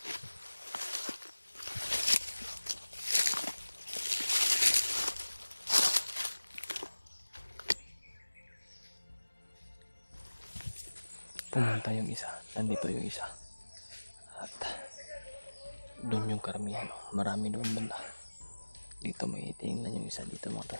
Pumunta yung isa. Nandito yung isa. At doon yung karamihan. Marami doon banda. Dito may tingnan yung isa dito mga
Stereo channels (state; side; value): inverted; both; correlation -1.00